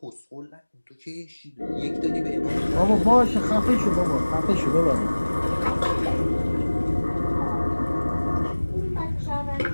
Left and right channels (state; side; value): inverted; both; correlation -1.00